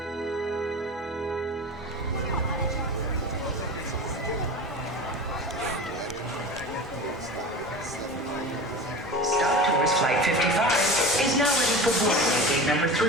Flight 55 is now ready for boarding at gate number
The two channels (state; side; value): normal; both; correlation 0.33